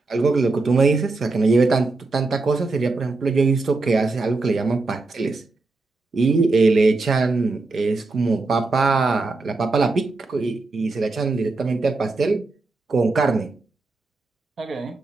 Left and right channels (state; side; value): quieter; left; 3.5 dB